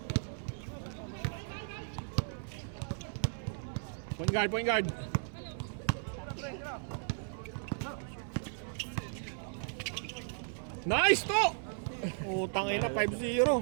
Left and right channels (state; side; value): silent; left; 54 dB below the other